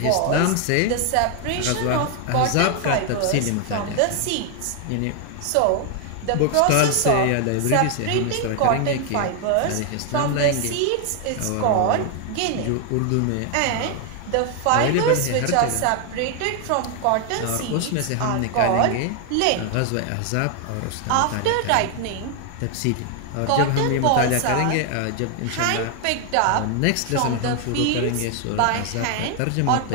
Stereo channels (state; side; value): different; both; correlation 0.00